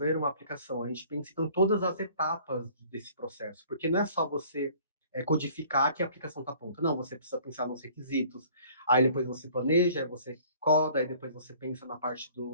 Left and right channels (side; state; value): both; inverted; correlation -0.53